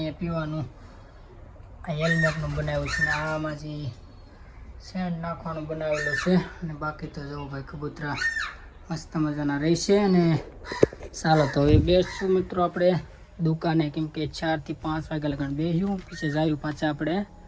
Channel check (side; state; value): both; identical; correlation 1.00